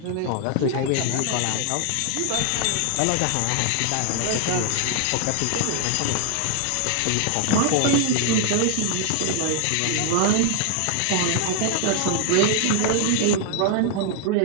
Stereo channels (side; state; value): both; different; correlation 0.00